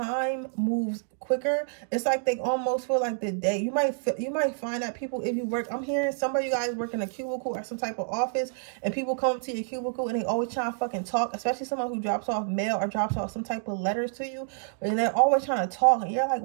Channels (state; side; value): silent; left; digital silence